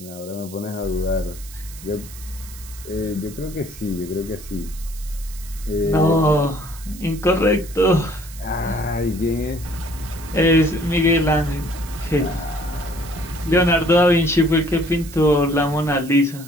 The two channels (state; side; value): noise; right; hiss, 17 dB below the sound